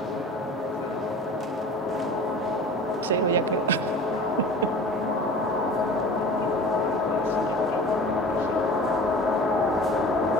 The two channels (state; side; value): normal; both; correlation 0.40